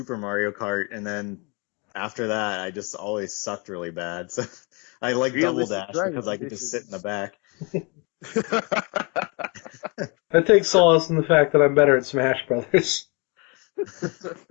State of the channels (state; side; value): quieter; right; 30.8 dB